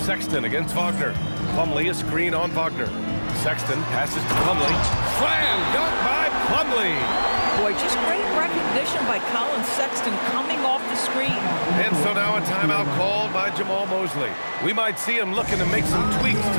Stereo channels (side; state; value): both; inverted; correlation -1.00